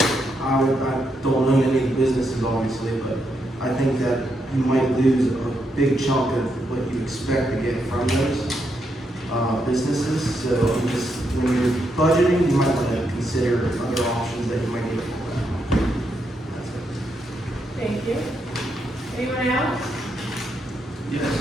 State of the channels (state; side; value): normal; both; correlation 0.80